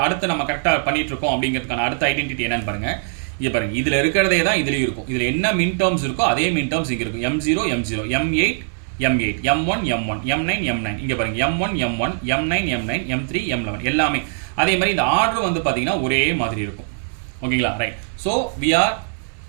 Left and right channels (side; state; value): left; silent; 63 dB below the other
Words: அடுத்து நம்ம கரெக்டாக பண்ணிட்டு இருக்கோம் அப்படிங்கிறதுக்கான அடுத்த ஐடென்டிட்டி என்னன்னு பாருங்கள். இங்கே பாருங்கள், இதில் இருக்கிறதே தான் இதுலேயும் இருக்கும். இதில் என்ன மின் டேர்ம்ஸ் இருக்கோ அதே மின் டேர்ம்ஸ் இங்கே இருக்கும். M0 M0 M8 M8 M1 M1 M9 M9. இங்கே பாருங்கள் M1 M1 M9 M9 M3 M11 எல்லாமே அதே மாதிரி. இந்த ஆர்டர் வந்து பார்த்தீங்கன்னா ஒரே மாதிரி இருக்கும். ஓகேங்களா? Right. So we are